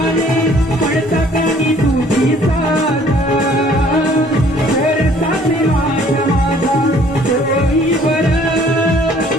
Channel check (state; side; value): normal; both; correlation 0.57